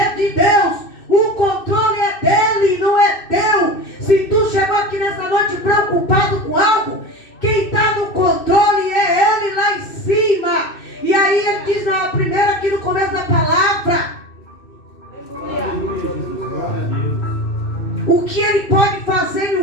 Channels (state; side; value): late; right; 2.6 ms